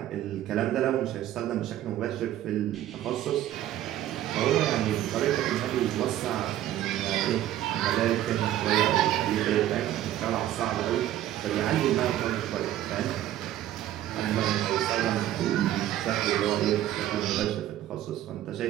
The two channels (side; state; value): left; quieter; 12.9 dB